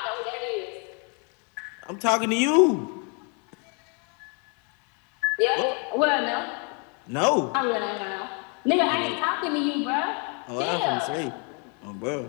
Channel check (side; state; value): right; quieter; 36.5 dB